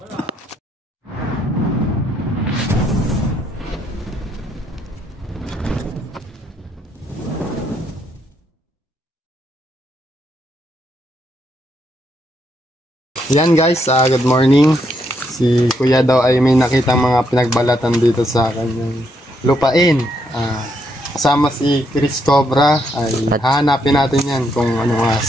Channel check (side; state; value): both; normal; correlation 0.76